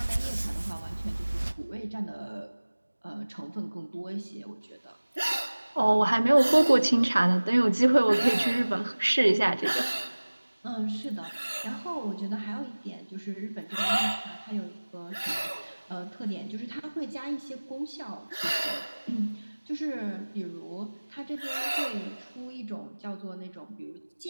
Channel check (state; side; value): inverted; both; correlation -1.00